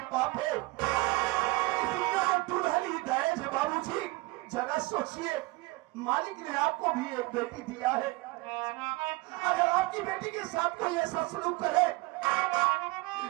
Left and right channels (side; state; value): left; quieter; 22.7 dB